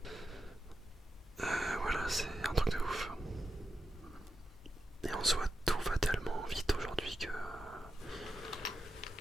Voilà, c'est un truc de ouf. Et en soi, tout va tellement vite aujourd'hui que...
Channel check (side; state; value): both; normal; correlation 0.89